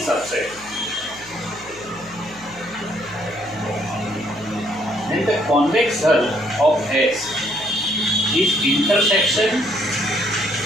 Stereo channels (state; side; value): noise; right; hum, 23 dB below the sound